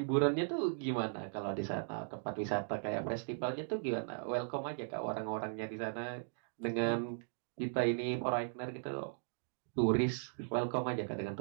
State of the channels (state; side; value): silent; left; digital silence